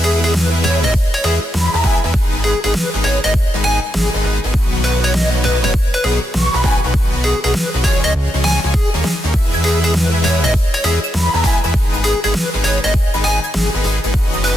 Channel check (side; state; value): both; normal; correlation 0.84